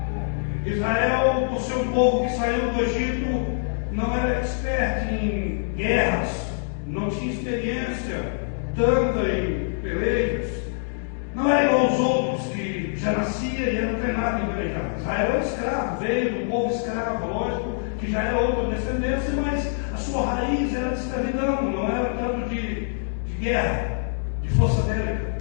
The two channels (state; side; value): silent; right; digital silence